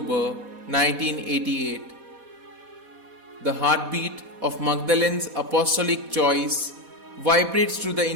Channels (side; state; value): left; late; 4.1 ms